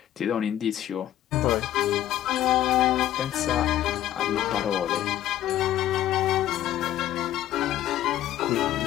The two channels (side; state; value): right; quieter; 12.6 dB